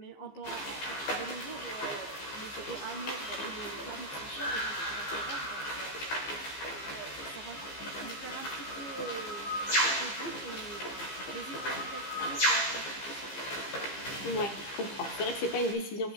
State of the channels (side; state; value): right; late; 15 ms